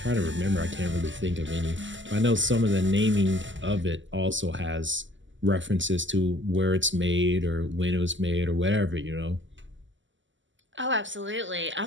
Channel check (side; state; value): left; late; 0.55 ms